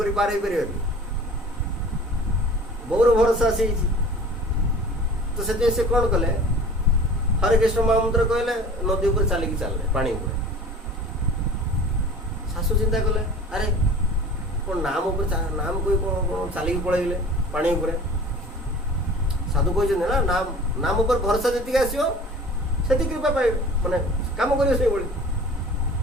पार हो पार बहुर भरोसा से तो से कौन कले हरे कृष्ण महामंत्र कहले नदी ऊपर चलिकी चलले पानी ऊपर शाशु चिंता कले अरे कौन नाम ऊपर नाम कोई कौन चलिकी पलैले पानी ऊपर साधु कहते ना नाम नाम ऊपर भरोसा जी आसो से कृपा पाए माने काम कर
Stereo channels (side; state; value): both; normal; correlation 0.43